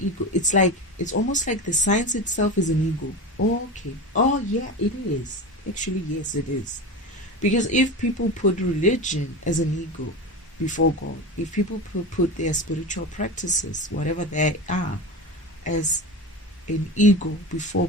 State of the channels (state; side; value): normal; both; correlation 0.26